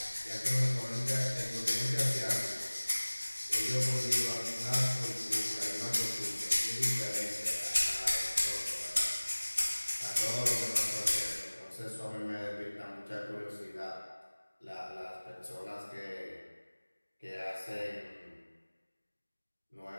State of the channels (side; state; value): both; inverted; correlation -1.00